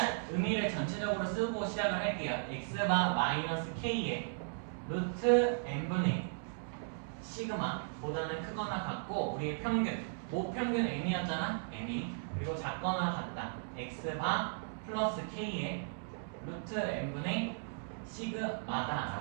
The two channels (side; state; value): left; silent; digital silence